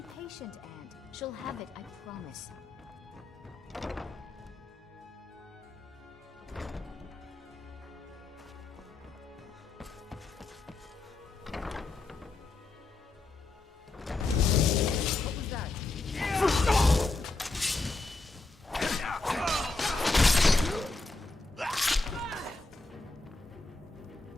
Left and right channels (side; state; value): right; quieter; 3.3 dB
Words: patient, Aunt. She'll have it, I promise. What was that?